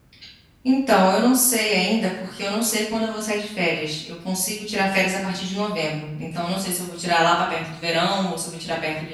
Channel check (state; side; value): identical; both; correlation 1.00